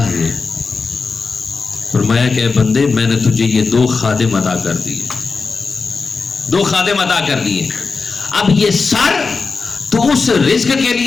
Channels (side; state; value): right; quieter; 4.5 dB